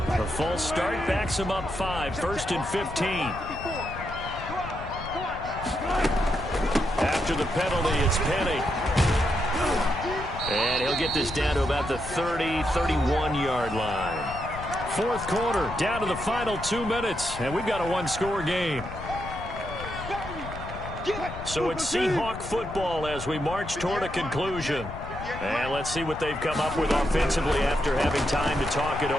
The false start backs him up 5, first and 15. After the penalty, it's Penny. And he'll get this down to about the 30, 31-yard line. Fourth quarter, down to the final 2 minutes, and we've got a one-score game. So it's Seahawk football as we march toward a conclusion. And let's see what they've come up with offensively after having time to talk it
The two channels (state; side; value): noise; left; rumble, 11 dB below the sound